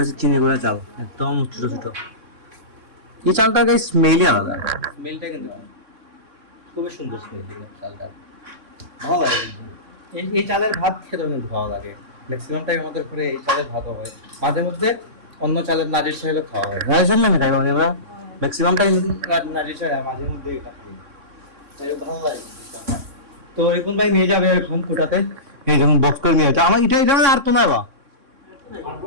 হচ্ছে চিনি গুঁড়া চাল, একদম ছোট ছোট। এই চালটা গাইস স্মেলই আলাদা, স্মেলটা কিন্তু খুবই সুন্দর স্মেল চালটা, ভালো লাগে। এই চালের ভাত খেতেও কিন্তু ভালো লাগে। ম্যাক্সিমাম টাইম আমাদের ঘরে এই চালের ভাতও হয়, মাঝে মধ্যে অন্য চালের নাজির চাইলেও খাওয়া হয়। নাজির চাল না খাই মানে আমরা ম্যাক্সিমাম টাইম নাজির চাল, মাঝে মধ্যে এটা খাই, ভালো লাগে। তো রিপন ভাই নিয়ে যাবে এখন কুটাতে, এই যখন বক্স করে নিয়ে যাচ্ছে আমার এটা মানে আর তো নয় বা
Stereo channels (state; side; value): late; left; 3.6 ms